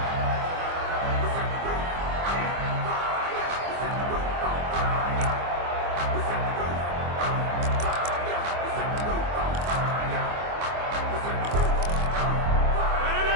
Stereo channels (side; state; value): left; late; 24 ms